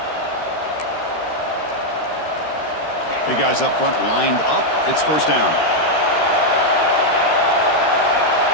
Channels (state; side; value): late; right; 13 ms